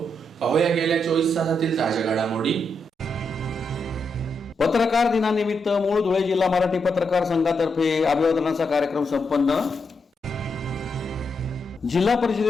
पाहूया गेल्या 24 तासातील ताज्या घडामोडी। पत्रकार दिनानिमित्त मूळ धुळे जिल्हा मराठी पत्रकार संघातर्फे अभिवादनाचा कार्यक्रम संपन्न। जिल्हा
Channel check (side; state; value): both; normal; correlation 0.82